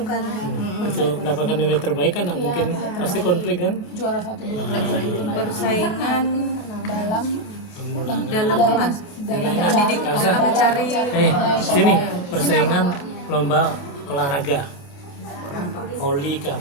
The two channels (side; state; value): right; late; 29 ms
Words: kan. Untuk mendapatkan nilai terbaik kan nggak mungkin pasti konflik kan? Juara satu dua Persaingan dalam dalam kelas, dalam mendidik, dalam mencari. Sini persaingan lomba olahraga. Voli kah,